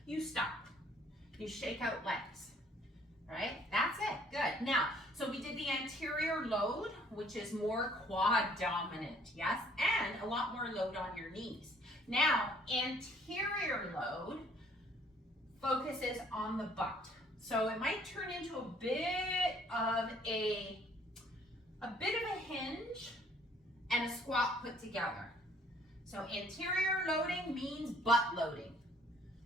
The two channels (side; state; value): both; normal; correlation 0.60